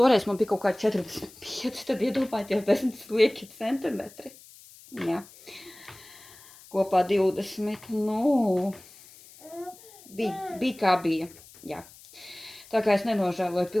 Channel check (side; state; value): left; noise; hiss, 22 dB below the sound